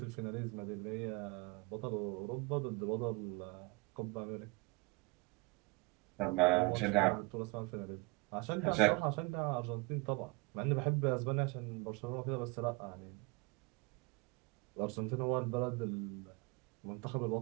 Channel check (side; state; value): left; quieter; 26.5 dB